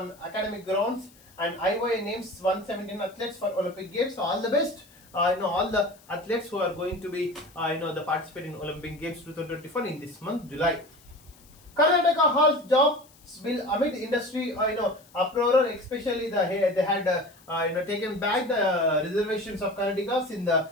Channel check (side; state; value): left; noise; hiss, 27 dB below the sound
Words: academic grounds. And IOA names 117 athletes for Olympic Games. So all the best. All the athletes who are going to be the participate in Olympic Games 2024 in this month, July. Karnataka halts job bill amid industry uproar, especially they had taken back the reservations of Karnatakas in the